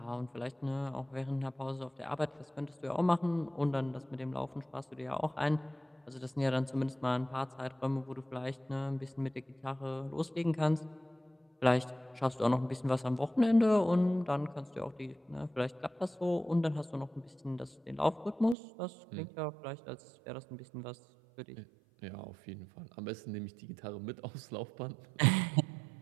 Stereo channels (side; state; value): left; drops out; at 18.6 s